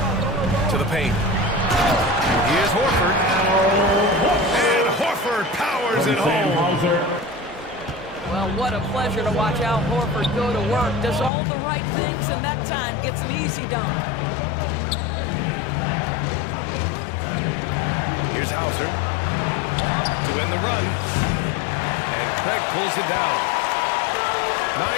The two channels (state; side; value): drops out; right; at 11.3 s